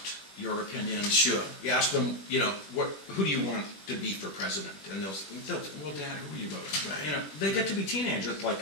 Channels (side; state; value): right; late; 20 ms